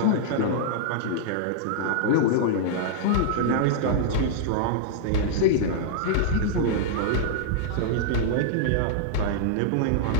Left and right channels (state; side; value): different; both; correlation -0.01